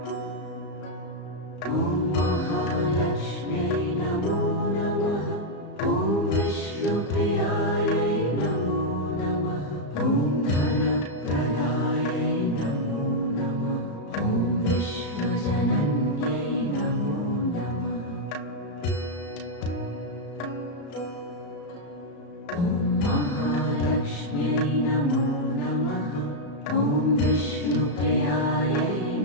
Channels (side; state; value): right; late; 34 ms